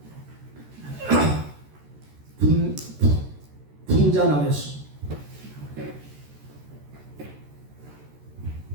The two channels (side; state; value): left; late; 14 ms